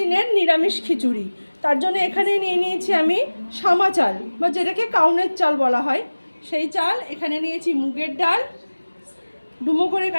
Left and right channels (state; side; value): inverted; both; correlation -1.00